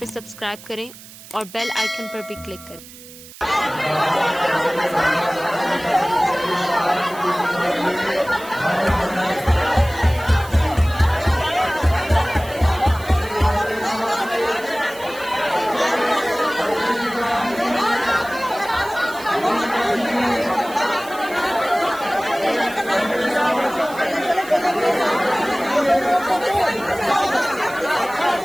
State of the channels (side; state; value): right; noise; hiss, 18 dB below the sound